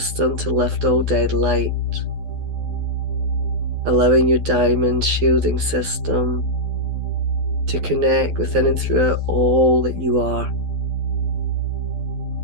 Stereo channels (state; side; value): late; left; 12 ms